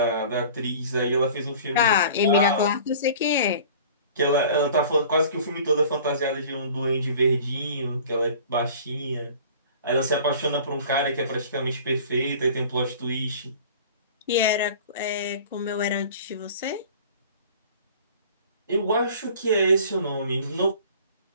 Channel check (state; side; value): inverted; both; correlation -0.45